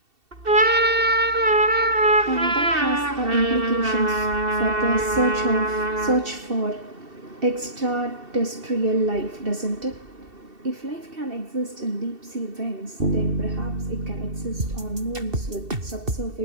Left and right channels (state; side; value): late; left; 2.7 ms